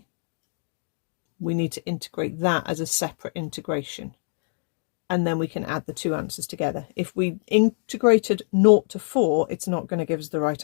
we need to integrate that as a separate integration, and then we can add the two answers together. If we integrated 0 to 4, it's not going to give us the right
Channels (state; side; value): silent; right; digital silence